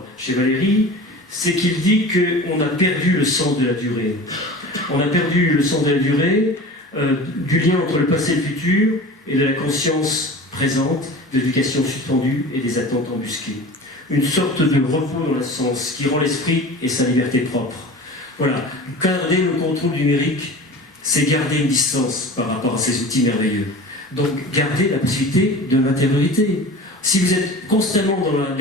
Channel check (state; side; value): normal; both; correlation 0.36